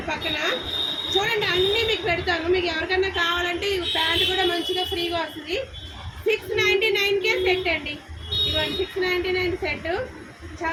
పక్కన. చూడండి అన్నీ మీకు పెడతాను. మీకు ఎవరికన్నా కావాలంటే ఈ ప్యాంట్ కూడా మంచిగా ఫ్రీగా వస్తుంది. 699కే సెట్ అండి. ఇవన్నీ 699 సెట్.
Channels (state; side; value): identical; both; correlation 1.00